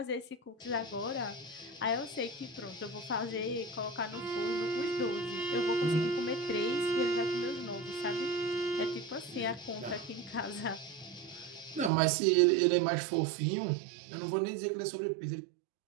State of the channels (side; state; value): left; drops out; at 11.9 s